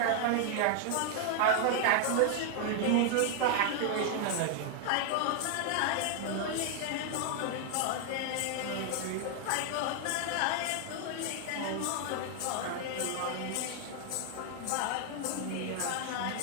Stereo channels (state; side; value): different; both; correlation 0.00